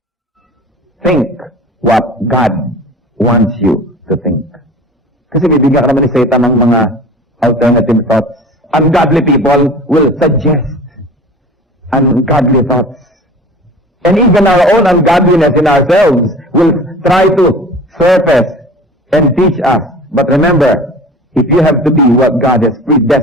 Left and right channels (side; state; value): both; normal; correlation 0.40